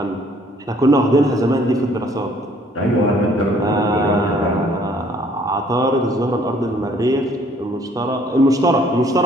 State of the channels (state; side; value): normal; both; correlation 0.60